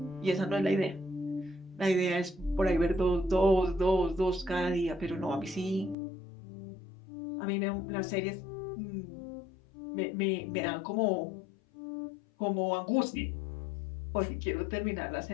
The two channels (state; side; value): drops out; right; at 6.0 s